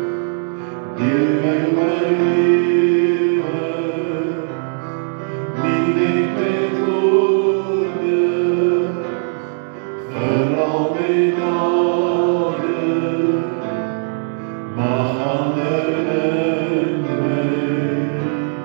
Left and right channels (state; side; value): silent; left; 67 dB below the other